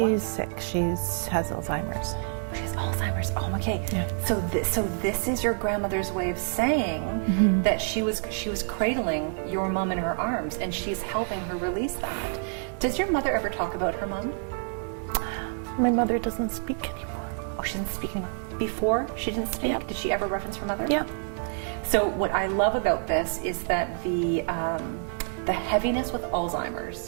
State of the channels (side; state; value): left; silent; 60 dB below the other